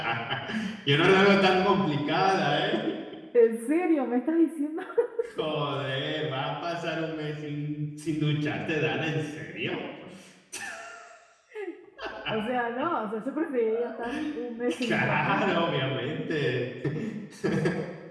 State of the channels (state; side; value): identical; both; correlation 1.00